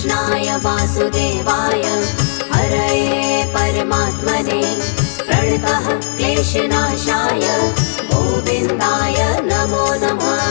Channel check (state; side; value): silent; right; digital silence